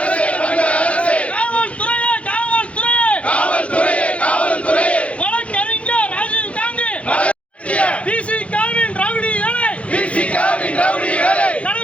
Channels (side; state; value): right; late; 0.063 ms